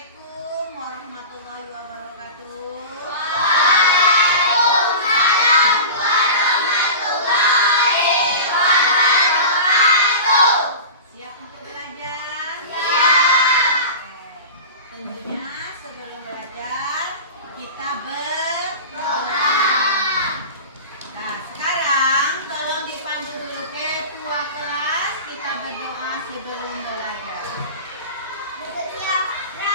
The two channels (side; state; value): both; inverted; correlation -0.32